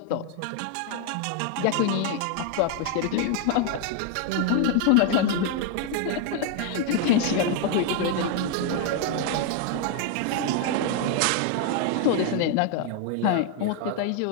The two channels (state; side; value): different; both; correlation 0.00